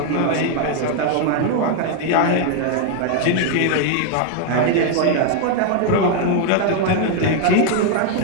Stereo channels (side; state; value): both; different; correlation 0.00